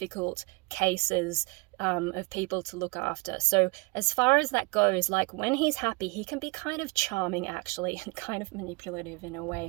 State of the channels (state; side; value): quieter; left; 27.4 dB